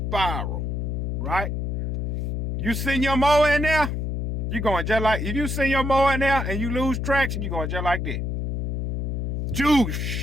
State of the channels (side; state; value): left; noise; hum, 1 dB below the sound